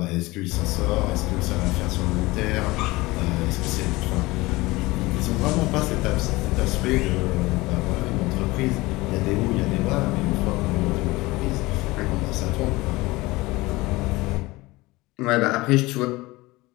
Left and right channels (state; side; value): quieter; right; 21.0 dB